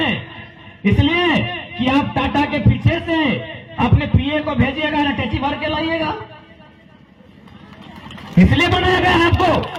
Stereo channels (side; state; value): both; identical; correlation 1.00